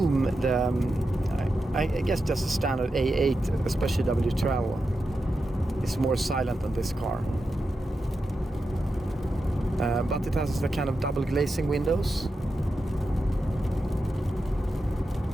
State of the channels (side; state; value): both; normal; correlation 0.89